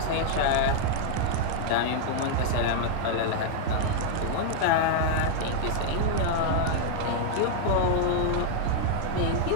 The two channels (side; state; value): both; different; correlation -0.01